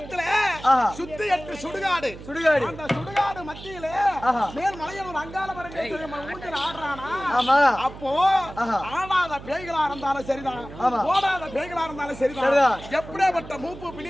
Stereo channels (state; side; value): noise; right; hum, 15 dB below the sound